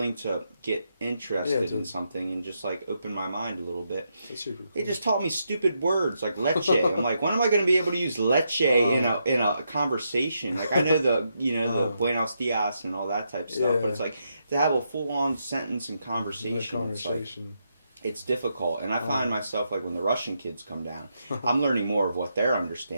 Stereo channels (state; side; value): inverted; both; correlation -0.81